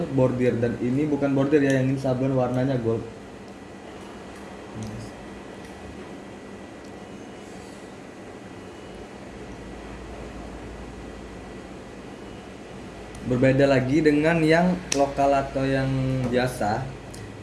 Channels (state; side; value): identical; both; correlation 1.00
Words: bordir, dan ini bukan bordir ya, yang ini sablon warnanya gold. Berbeda lagi dengan yang lokal atau yang biasa,